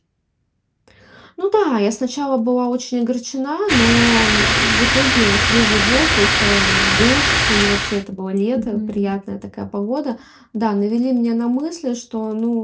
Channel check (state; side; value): identical; both; correlation 1.00